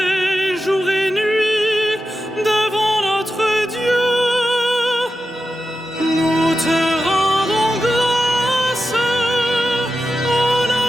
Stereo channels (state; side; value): normal; both; correlation 0.91